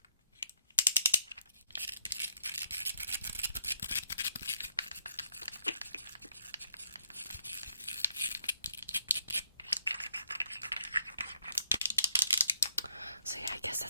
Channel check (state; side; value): inverted; both; correlation -0.72